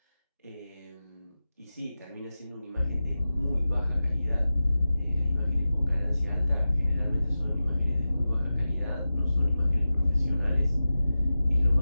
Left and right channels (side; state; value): both; inverted; correlation -0.94